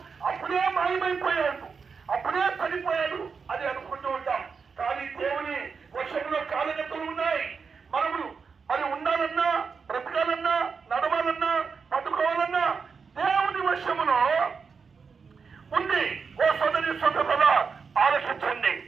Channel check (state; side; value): quieter; left; 5.5 dB